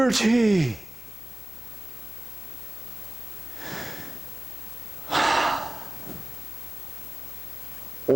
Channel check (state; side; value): normal; both; correlation 0.96